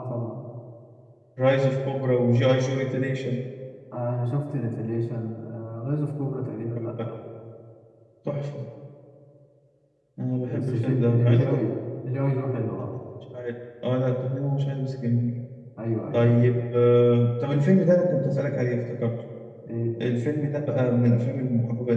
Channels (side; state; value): both; identical; correlation 1.00